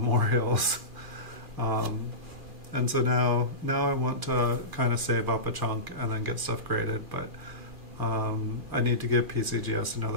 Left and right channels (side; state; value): left; late; 2.4 ms